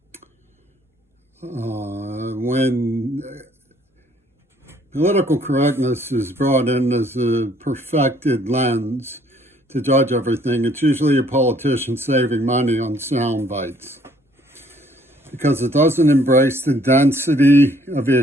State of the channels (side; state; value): both; normal; correlation 0.62